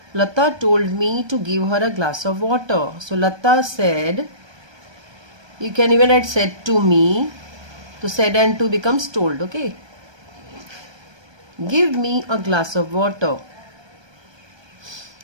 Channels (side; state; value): left; late; 1.2 ms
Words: Lata told me to give her a glass of water. So Lata said, you can even write said to me. So said and to becomes told. Okay. Give me a glass of water.